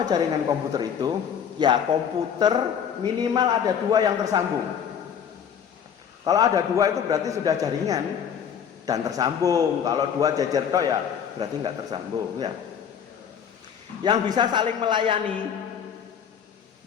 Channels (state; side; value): quieter; right; 8.0 dB